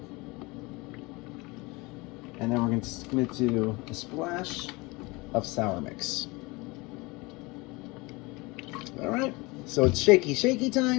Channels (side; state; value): right; quieter; 24.5 dB